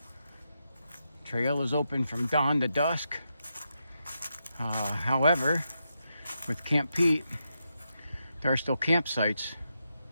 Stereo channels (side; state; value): both; inverted; correlation -0.84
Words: Trail is open from dawn to dusk. However, with Camp Peet, there are still campsites